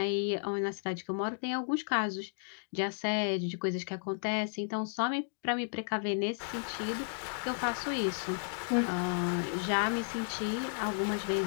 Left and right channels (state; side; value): silent; right; digital silence